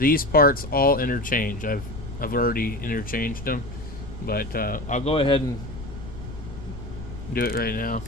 parts all interchange. I've already interchanged them, but I'll go ahead and do it right now.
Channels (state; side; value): noise; left; rumble, 11 dB below the sound